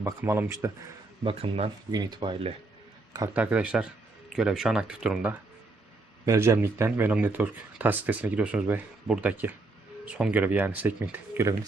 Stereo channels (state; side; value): quieter; left; 3.3 dB